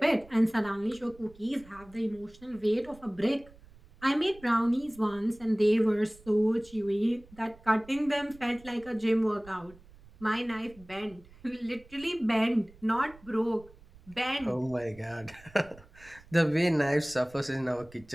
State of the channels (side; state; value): right; noise; rumble, 24 dB below the sound